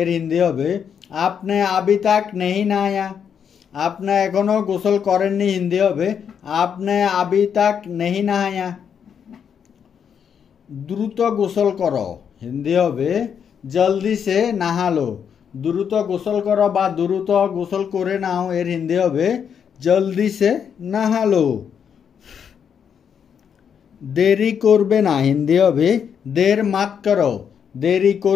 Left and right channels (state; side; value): quieter; right; 7.6 dB